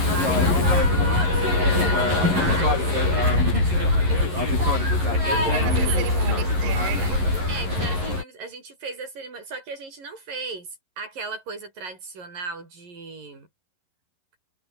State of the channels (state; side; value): late; left; 11 ms